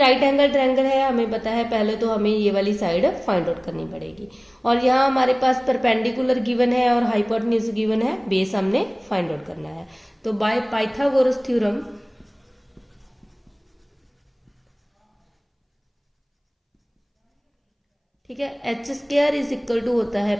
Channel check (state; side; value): identical; both; correlation 1.00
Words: एंगल ट्रायंगल है, हमें पता है, पहले तो हमें ये वाली साइड फाइंड आउट करनी पड़ेगी। और यहाँ हमारे पास परपेंडिकुलर गिवन है और हाइपोटेन्यूज गिवन है, बेस हमने फाइंड आउट करना है। तो बाय पाइथागोरस थ्योरम ठीक है, H square is equal to होता है